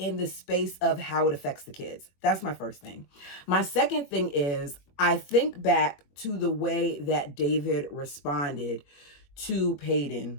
the space of how it affects the kids. That's my first thing. My second thing is I think back to the way that David responded to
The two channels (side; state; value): right; late; 21 ms